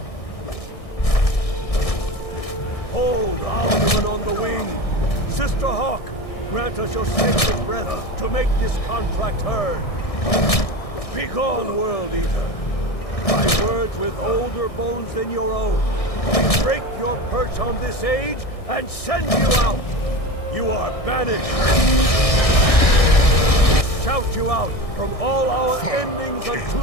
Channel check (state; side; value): late; right; 1.6 ms